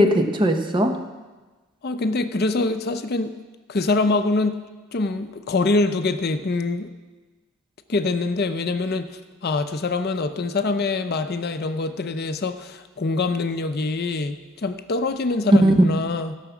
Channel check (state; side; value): normal; both; correlation 0.57